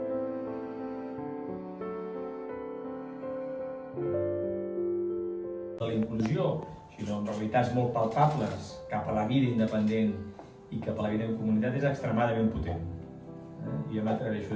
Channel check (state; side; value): identical; both; correlation 1.00